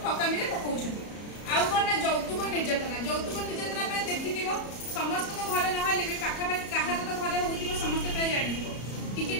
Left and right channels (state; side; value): late; right; 34 ms